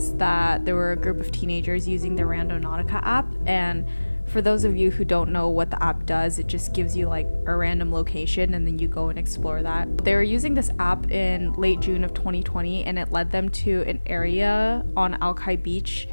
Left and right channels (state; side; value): inverted; both; correlation -1.00